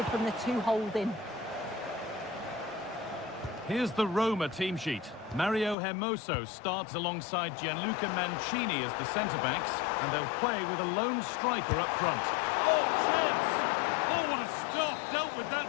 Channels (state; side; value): drops out; right; at 5.8 s